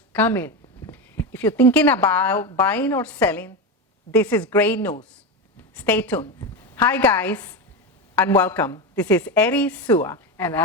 come in. If you're thinking about buying or selling, this is great news. Stay tuned. Hi guys, and welcome. This is Eddie Sua And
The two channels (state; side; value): normal; both; correlation 0.16